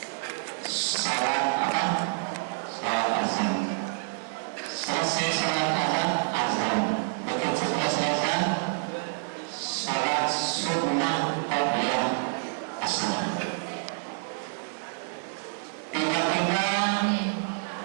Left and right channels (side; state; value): left; silent; 59 dB below the other